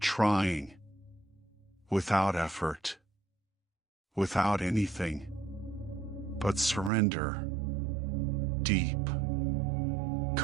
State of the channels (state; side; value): drops out; left; at 6.9 s